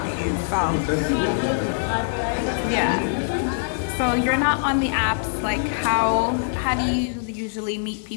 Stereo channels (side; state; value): right; silent; digital silence